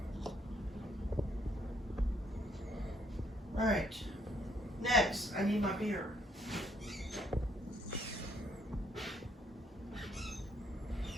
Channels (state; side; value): normal; both; correlation 0.68